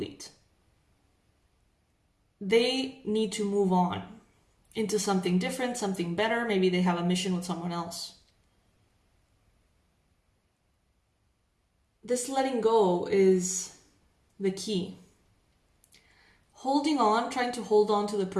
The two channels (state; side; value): identical; both; correlation 1.00